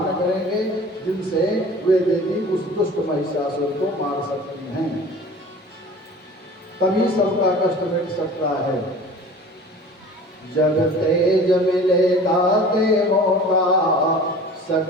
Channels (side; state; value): both; normal; correlation 0.42